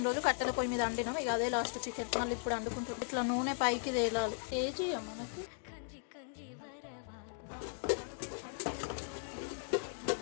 రోజు కట్టెల పొయ్యి మీద వండినాం. ఇక అదే లాస్ట్ చికెన్. మళ్ళీ ఇప్పుడు వండుకుంటుంది. ఇట్లా నూనె పైకి తేలాలి. ఏ చేయం మనకి.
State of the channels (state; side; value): silent; right; 53 dB below the other